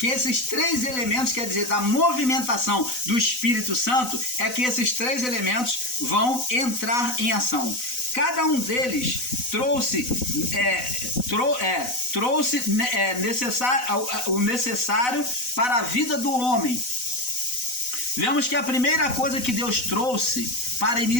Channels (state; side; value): late; right; 4.0 ms